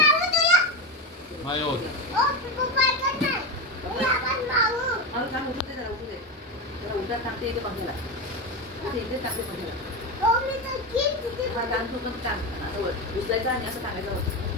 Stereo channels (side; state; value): both; normal; correlation 0.16